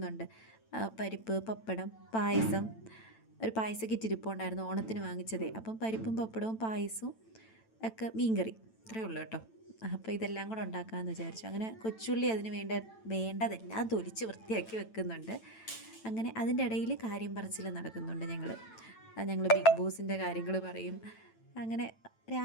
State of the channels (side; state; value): right; late; 9.0 ms